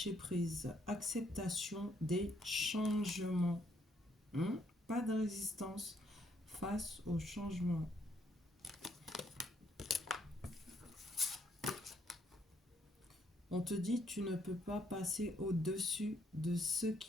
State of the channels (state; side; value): normal; both; correlation 0.70